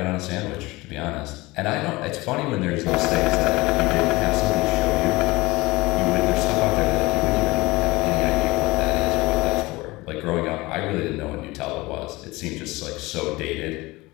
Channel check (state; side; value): quieter; right; 21.4 dB